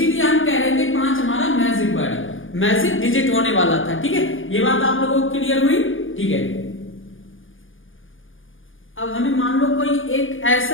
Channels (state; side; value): late; right; 0.58 ms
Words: हम कह रहे थे 5 हमारा मैजिक वर्ड है, मैजिक डिजिट होने वाला था, ठीक है। ये बात आप लोगों को क्लियर हुई? ठीक है। अब हमें मान लो कोई एक